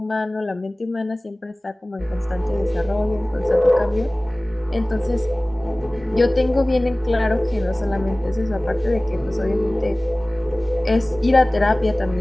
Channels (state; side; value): normal; both; correlation 0.98